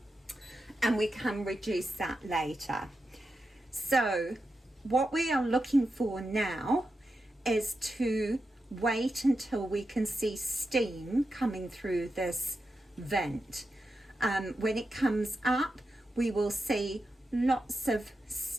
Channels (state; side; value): normal; both; correlation 0.89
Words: and we can reduce that later. So what we are looking for now is to wait until we can see steam coming through this vent. When it comes up, we will see lots of